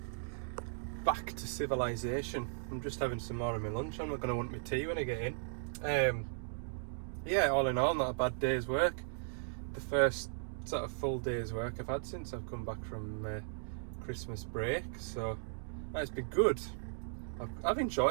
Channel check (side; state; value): left; silent; digital silence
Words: Back to civilization. I'm just having some more of my lunch. I'm not going to want my tea when I get in. Yeah, all in all, not a bad day's work. The first sort of full day's work I've had since I've come back from Christmas break, so it's been good. I've